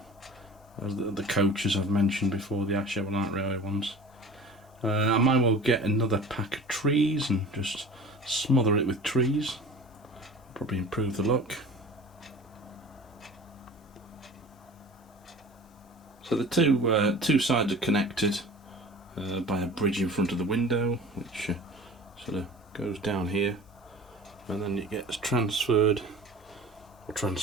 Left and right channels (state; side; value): normal; both; correlation 0.40